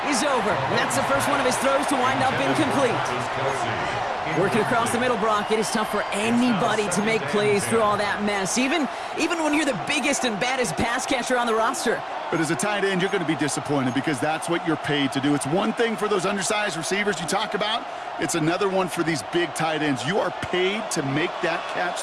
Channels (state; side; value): identical; both; correlation 1.00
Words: is over. And that's the first one of his throws to wind up incomplete. Working across the middle, Brock, it is tough for anybody to make plays through all that mess, even when you're the biggest and baddest pass catcher on the roster. But as a tight end, you're going to be disappointed because that's what you're paid to do. It's one thing for those undersized receivers you talk about. It's another one for these big tight ends. You are paid to make that catch